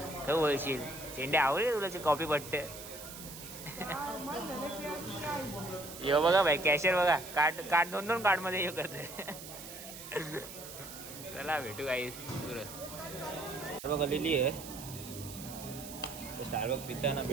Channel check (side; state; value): right; noise; hiss, 12 dB below the sound